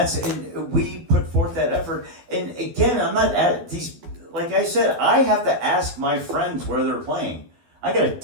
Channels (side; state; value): left; late; 12 ms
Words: we put forth that effort. And again, I'm not at these. Like I said, I have to ask my friends where they're playing. I gotta